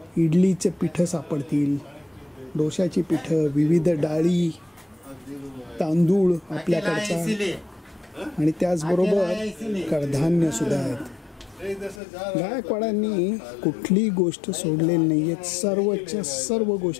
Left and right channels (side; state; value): right; drops out; at 12.0 s